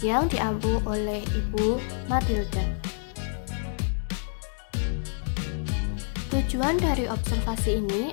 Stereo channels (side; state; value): right; silent; digital silence